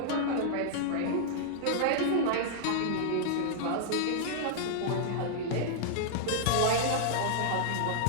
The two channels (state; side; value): different; both; correlation -0.01